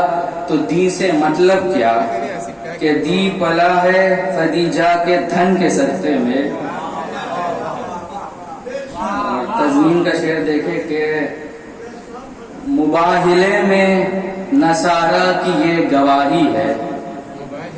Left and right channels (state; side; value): identical; both; correlation 1.00